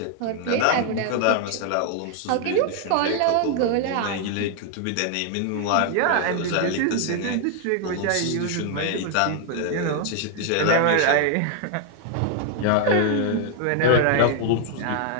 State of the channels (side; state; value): both; different; correlation 0.00